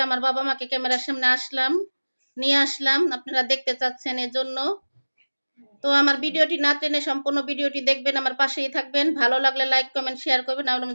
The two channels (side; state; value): both; inverted; correlation -1.00